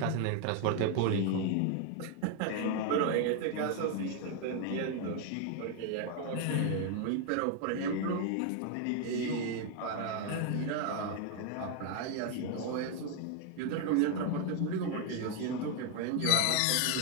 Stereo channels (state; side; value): different; both; correlation 0.01